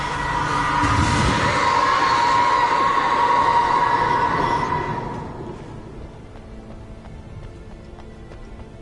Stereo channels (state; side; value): identical; both; correlation 1.00